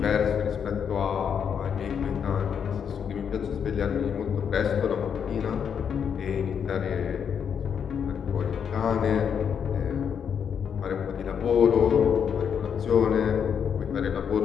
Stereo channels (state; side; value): quieter; right; 7.5 dB